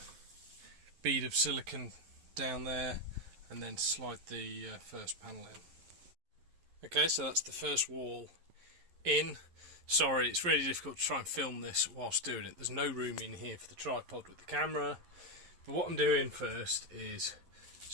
bead of silicone down there and then slide the first panel in. Okay, so that's the first wall in. Sorry, it's really difficult to try and film this whilst doing it. There's no room in here for the tripod with the camera. But what I'm doing first is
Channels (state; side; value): late; left; 11 ms